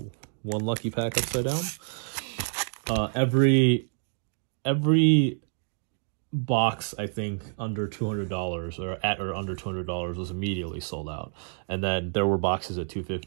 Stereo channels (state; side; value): silent; left; digital silence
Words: 1 lucky pack upside down, every box, I think, under $200 or at or under $200 was immediately sold out. And then there were boxes at